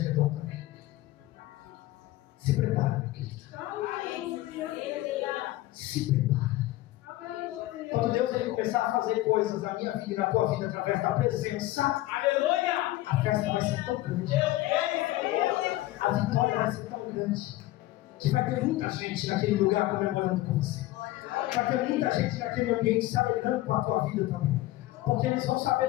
também. Se prepara, meu querido. Se prepara. Quando Deus ele começar a fazer coisas na minha vida e na tua vida através da presença, aleluia, a festa vai ser tão grande, a vitória vai ser tão grande, que vai ter muita gente naquele lugar comemorando com você. Vai ter muita gente naquele ambiente se alegrando com a tua vida também, porque eles vão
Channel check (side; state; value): right; quieter; 16.8 dB